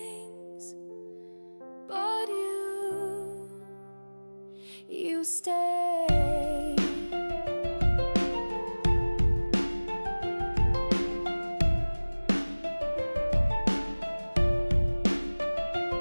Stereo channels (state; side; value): inverted; both; correlation -1.00